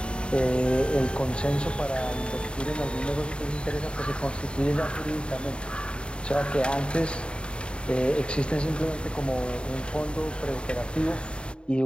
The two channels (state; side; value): late; right; 0.053 ms